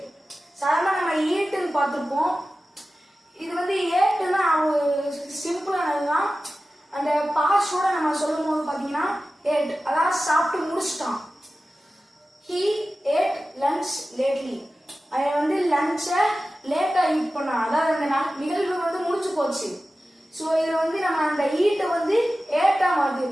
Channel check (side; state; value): both; normal; correlation 0.95